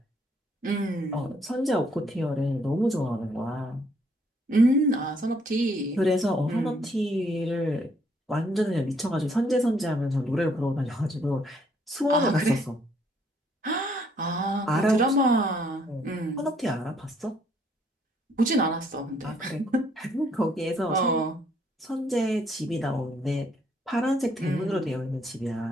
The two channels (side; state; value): both; normal; correlation 0.67